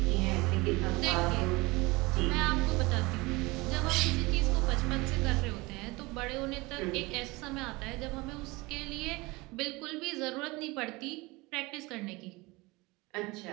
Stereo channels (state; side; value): quieter; left; 23.4 dB